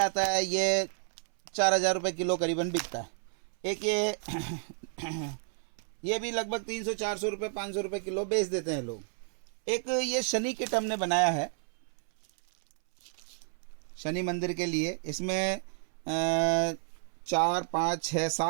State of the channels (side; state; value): left; silent; 57 dB below the other